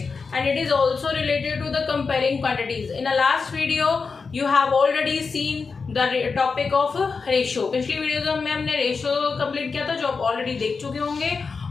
and it is also related to the comparing quantities. In the last video you have already seen the topic of ratio. पिछली video में हमने ratio complete किया था, जो आप already देख चुके होंगे.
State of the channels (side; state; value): right; quieter; 4.9 dB